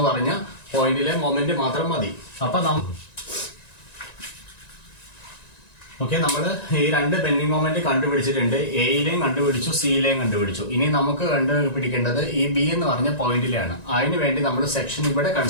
പറഞ്ഞ പോയിന്റിലെ മൊമെന്റ് മാത്രം മതി. അപ്പൊ ഓക്കെ, നമ്മൾ ഈ രണ്ട് ബെൻഡിങ് മൊമെന്റ് കണ്ടുപിടിച്ചിട്ടുണ്ട്. എയിലെയും കണ്ടുപിടിച്ചു, സിയിലെയും കണ്ടുപിടിച്ചു. ഇനി നമുക്ക് കണ്ടുപിടിക്കേണ്ടത് ഈ B എന്ന് പറഞ്ഞ പോയിന്റിലാണ്. അതിനു വേണ്ടി നമ്മൾ സെക്ഷൻ ഇവിടെ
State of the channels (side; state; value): right; late; 1.9 ms